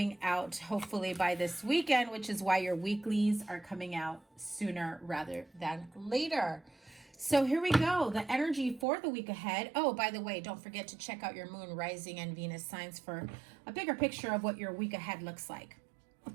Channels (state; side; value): drops out; left; at 8.8 s